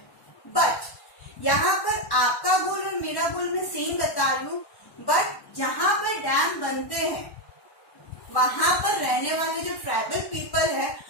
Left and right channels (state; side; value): late; right; 1.1 ms